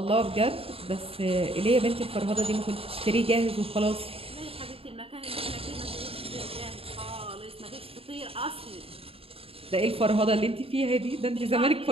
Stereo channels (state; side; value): late; left; 0.27 ms